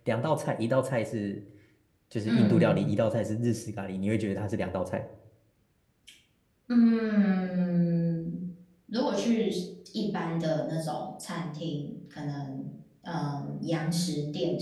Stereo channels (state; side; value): identical; both; correlation 1.00